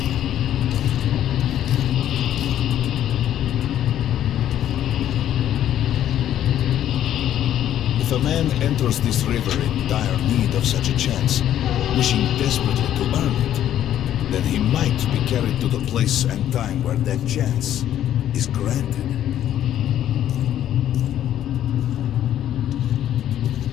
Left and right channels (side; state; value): right; quieter; 11.3 dB